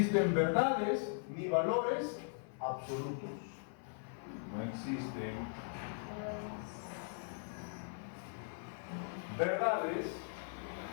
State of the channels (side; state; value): right; silent; 52 dB below the other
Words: verdades ni valores absolutos. No existen verdades